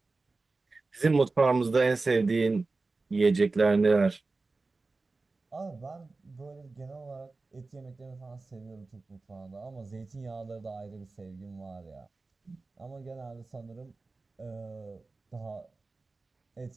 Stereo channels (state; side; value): quieter; left; 3.6 dB